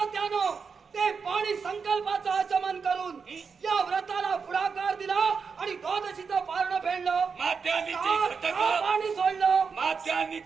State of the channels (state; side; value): quieter; left; 5.5 dB